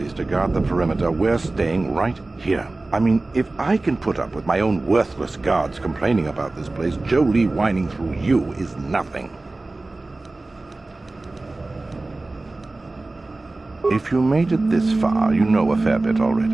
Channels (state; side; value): quieter; left; 3.1 dB